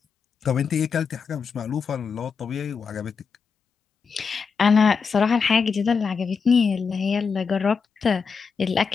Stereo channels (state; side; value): quieter; right; 5.6 dB